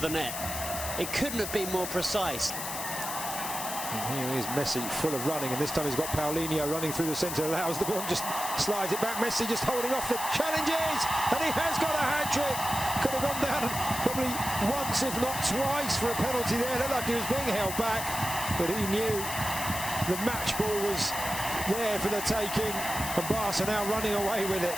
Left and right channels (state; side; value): noise; left; hiss, 5 dB below the sound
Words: the net. It couldn't have been more precise. And here is Messi, full of running, and this time he's got Paulino running through the centre, allows the ball, just slides it back. Messi just holding off the challenges, and he has got a hat-trick. Could have gone down probably once, if not twice, for a penalty there. Looked like he was being held back, but he knew the match ball was there for the taking, and Barca now running away with it.